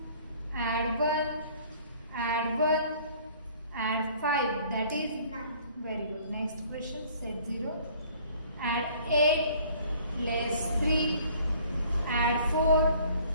add 1, add 1, add 5, that is 9. very good. Next question, set 0. Add 8, less 3, add 4,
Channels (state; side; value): inverted; both; correlation -0.55